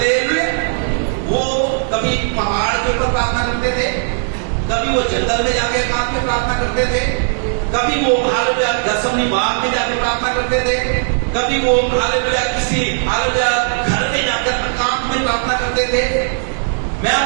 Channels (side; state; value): left; silent; digital silence